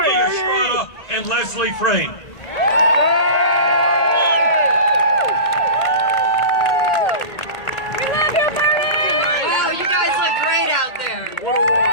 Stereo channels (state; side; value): late; right; 1.8 ms